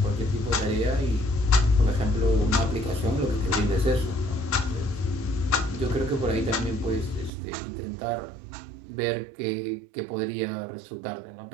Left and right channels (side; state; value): left; drops out; at 7.3 s